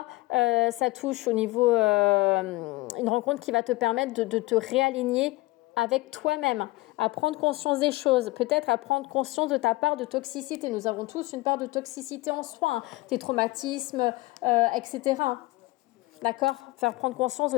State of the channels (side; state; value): right; quieter; 20.8 dB